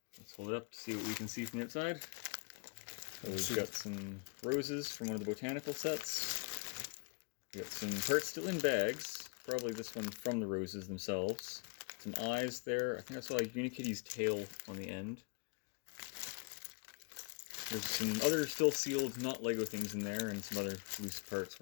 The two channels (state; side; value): quieter; right; 34.7 dB